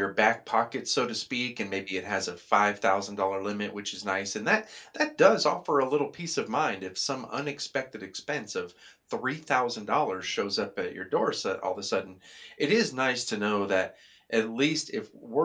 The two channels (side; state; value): both; identical; correlation 1.00